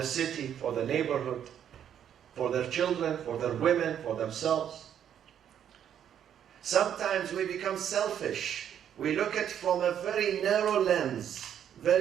city, for the neighborhood, for their children, for their women, for themselves. Sometimes we become selfish. We look at it from a very narrow lens.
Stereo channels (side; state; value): left; quieter; 9.4 dB